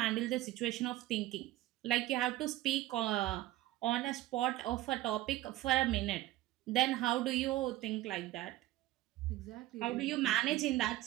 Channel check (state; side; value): quieter; left; 16.0 dB